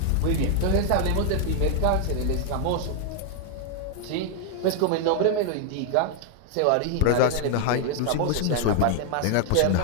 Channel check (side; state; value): both; different; correlation 0.00